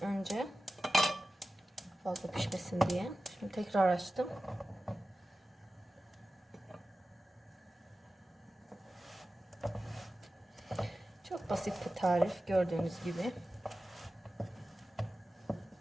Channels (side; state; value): both; normal; correlation 0.94